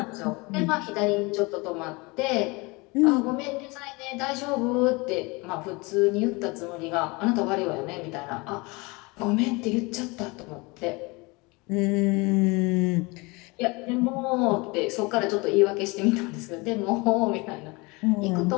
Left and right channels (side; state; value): right; quieter; 25.9 dB